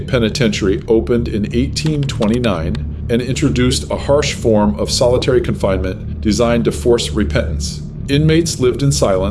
Penitentiary opened in 1829 and introduced a harsh form of solitary confinement designed to force repentance. Inmates lived in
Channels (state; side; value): identical; both; correlation 1.00